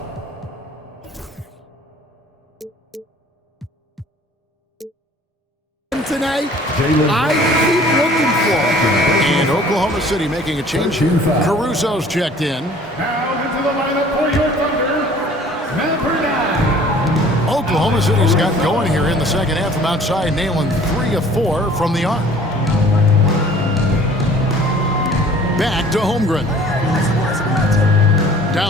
Tonight, I keep looking for him. And Oklahoma City making a change here. Caruso's checked in. Now into the lineup for your Thunder, number 9. Oklahoma City's got going here in the second half from outside, nailing 3 of 4 from the arc. Back to Holmgren.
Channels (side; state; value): both; normal; correlation 0.52